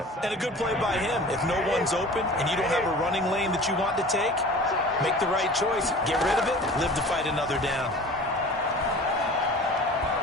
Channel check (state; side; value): normal; both; correlation 0.41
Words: And a good play by him. If no one's open and you don't have a running lane that you want to take, make the right choice. Get rid of it. Live to fight another down.